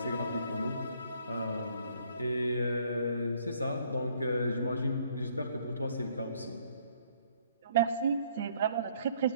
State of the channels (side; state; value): both; inverted; correlation -0.64